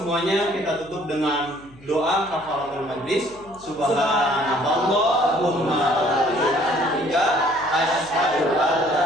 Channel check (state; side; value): noise; left; hum, 25 dB below the sound